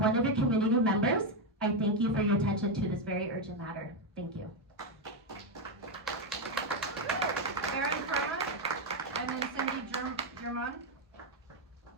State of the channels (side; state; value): both; normal; correlation 0.05